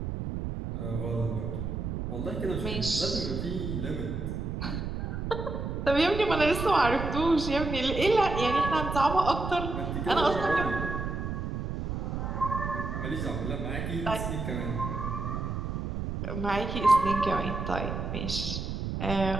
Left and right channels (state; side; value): noise; right; rumble, 4 dB below the sound